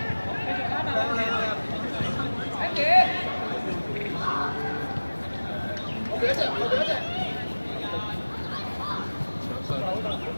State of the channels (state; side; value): inverted; both; correlation -1.00